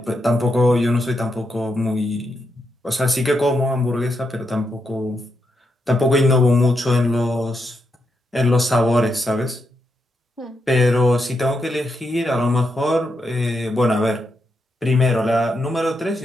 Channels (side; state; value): both; normal; correlation 0.83